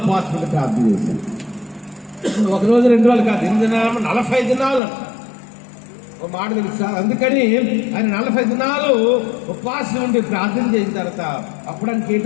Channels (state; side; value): drops out; right; at 4.8 s